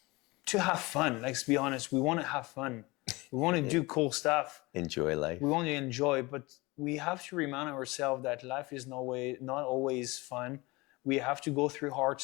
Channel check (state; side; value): quieter; right; 23.1 dB